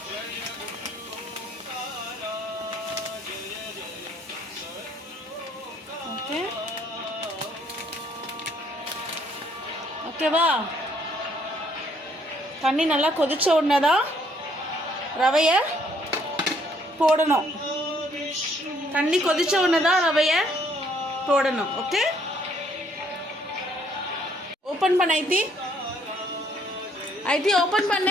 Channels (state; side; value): normal; both; correlation 0.66